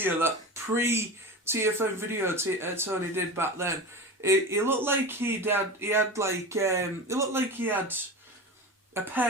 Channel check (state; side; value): normal; both; correlation 0.29